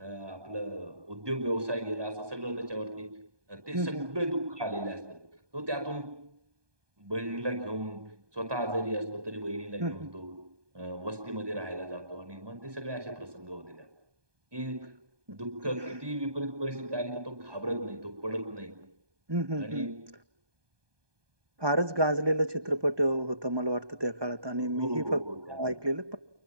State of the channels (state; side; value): late; left; 1.2 ms